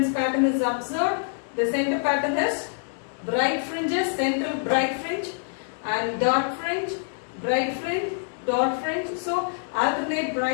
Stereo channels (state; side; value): silent; right; digital silence